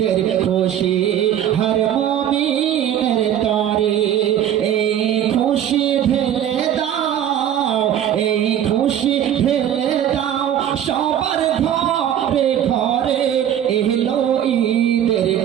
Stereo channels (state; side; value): quieter; left; 10.4 dB